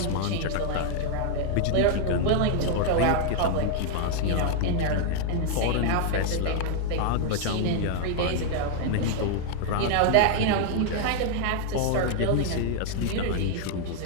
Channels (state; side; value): different; both; correlation 0.00